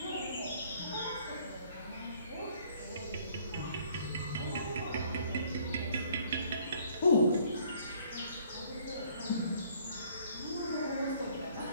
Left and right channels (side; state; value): both; inverted; correlation -0.60